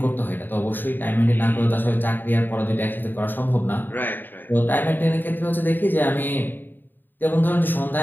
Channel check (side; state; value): right; late; 0.092 ms